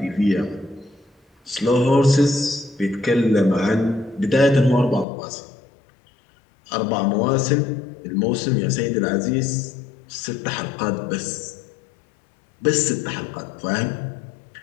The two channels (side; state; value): right; drops out; at 5.1 s